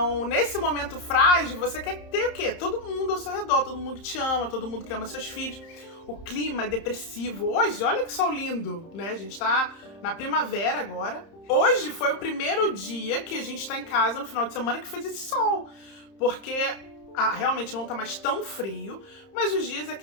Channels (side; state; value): right; late; 30 ms